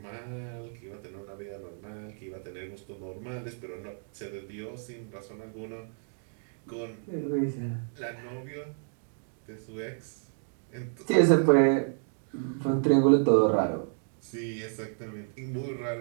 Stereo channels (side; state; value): left; silent; digital silence